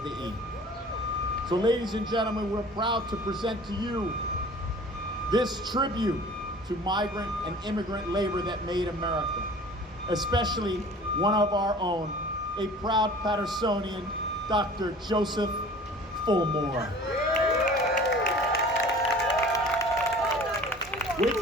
the E. So ladies and gentlemen, we're proud to present to you this tribute to migrant and immigrant labor that made America, especially one of our own, a proud Patersonian, Dr. Joseph Fulmore. Wait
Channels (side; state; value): both; normal; correlation 0.45